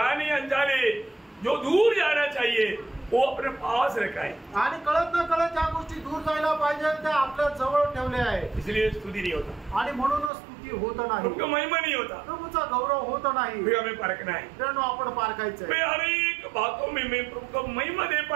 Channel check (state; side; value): drops out; left; at 10.3 s